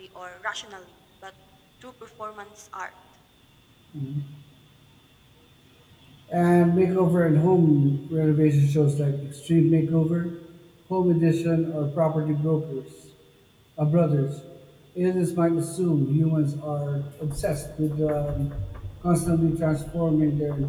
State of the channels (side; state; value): both; identical; correlation 1.00